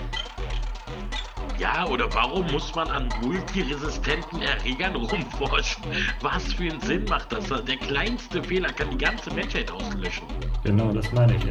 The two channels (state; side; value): identical; both; correlation 1.00